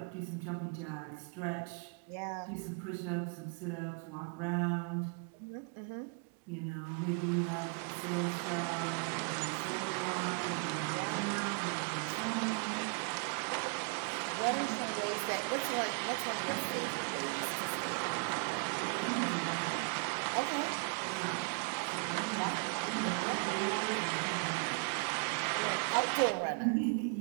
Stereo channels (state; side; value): quieter; left; 37.8 dB